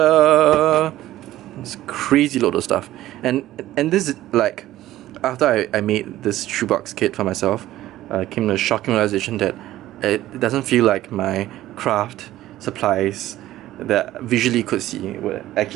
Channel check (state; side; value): quieter; left; 14.7 dB